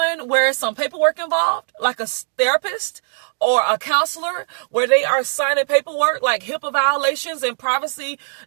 where some paperwork involved, like a therapist or a counselor, where they are signing paperwork like HIPAA violations and privacy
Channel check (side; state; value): left; silent; digital silence